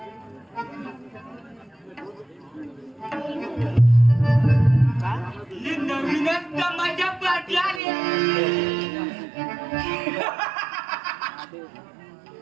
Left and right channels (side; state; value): left; drops out; at 7.8 s